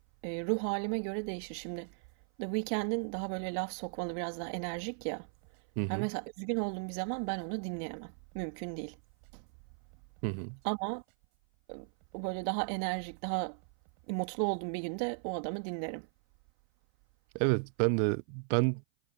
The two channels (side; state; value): left; silent; 54 dB below the other